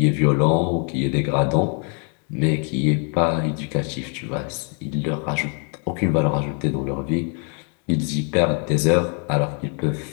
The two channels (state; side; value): quieter; right; 39.5 dB